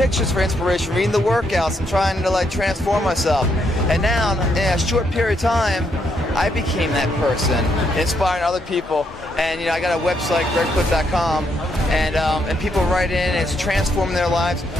for inspiration, reading the workouts, and trying to like transform myself. And now, in a short period of time, I became that person, inspiring other people. And you know, I got a website, gregplitt.com, and people write in, and it's transforming their lives.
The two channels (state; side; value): normal; both; correlation 0.76